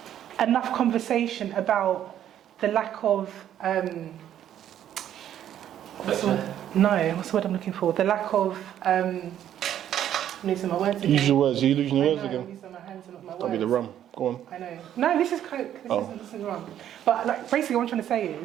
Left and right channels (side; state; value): left; quieter; 10.8 dB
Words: enough conversation about the lack of what's the word I'm looking for? The lack of I'm losing my words again. Use your words. Are you losing your words I'm again? using my hands and not my words. That'll be the rum. Go on. I know. No, this is Coke. This isn't rum. But like, basically, what I'm trying to say